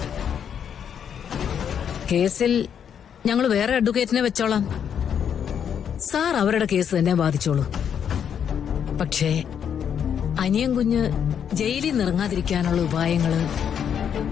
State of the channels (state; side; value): quieter; right; 8.3 dB